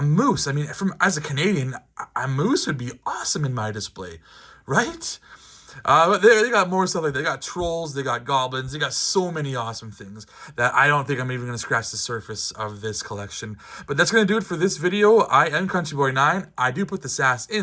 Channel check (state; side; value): identical; both; correlation 1.00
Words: moose. I mean, as a Canadian, a moose would be awesome in my display, right? But they got more stuff like that. They got trolls, they got goblins, they got so many awesome things that I don't think I'm even going to scratch the surface of this collection. But that's going to do it for this video. I am CountryBoy9. I do put the sass